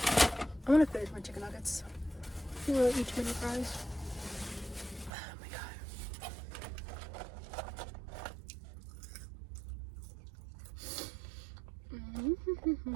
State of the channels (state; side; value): drops out; left; at 5.1 s